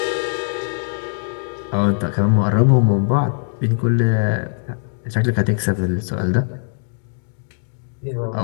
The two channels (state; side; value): silent; right; digital silence